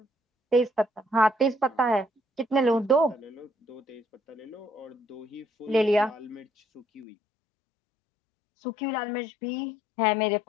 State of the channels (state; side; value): drops out; right; at 7.1 s